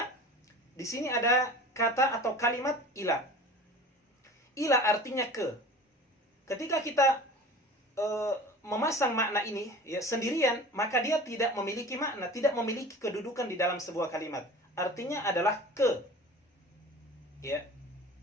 Di sini ada kata atau kalimat ila. Ila artinya ke. Ketika kita memasang makna ini ya sendirian, maka dia tidak memiliki makna, tidak memiliki kedudukan di dalam sebuah kalimat. Artinya adalah ke. Ya.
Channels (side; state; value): both; normal; correlation 0.40